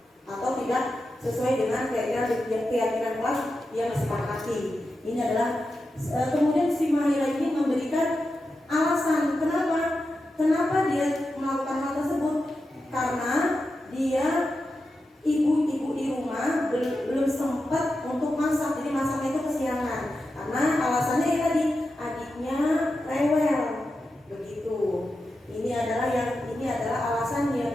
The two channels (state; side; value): normal; both; correlation 0.90